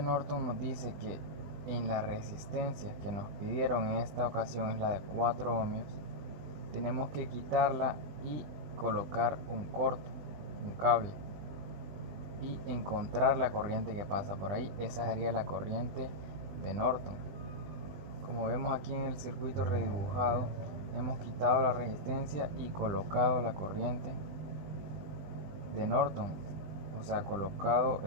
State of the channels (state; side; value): late; left; 20 ms